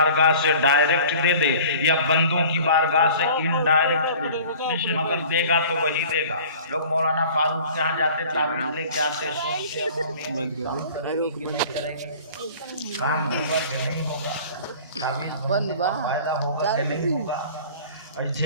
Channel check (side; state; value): both; inverted; correlation -0.45